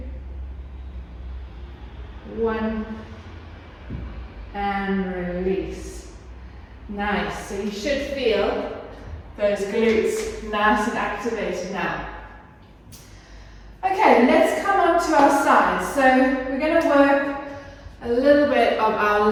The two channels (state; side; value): identical; both; correlation 1.00